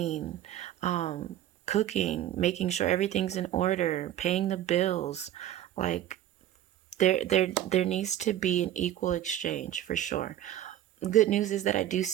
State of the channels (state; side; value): quieter; left; 12.1 dB